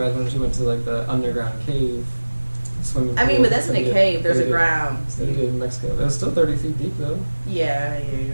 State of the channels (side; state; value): both; inverted; correlation -1.00